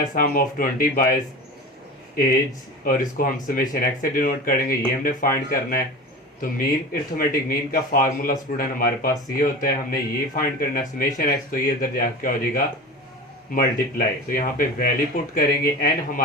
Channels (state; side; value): normal; both; correlation 0.32